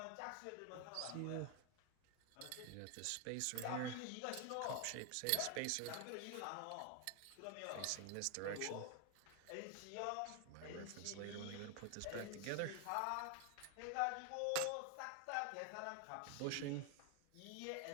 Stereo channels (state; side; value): different; both; correlation 0.01